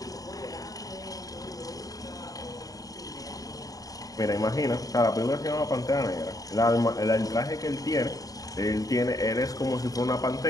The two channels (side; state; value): right; late; 0.18 ms